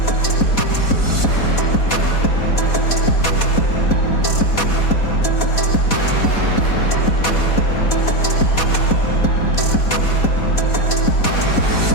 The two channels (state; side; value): late; right; 4.1 ms